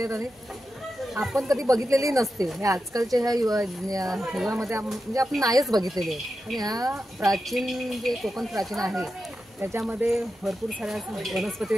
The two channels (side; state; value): both; normal; correlation 0.90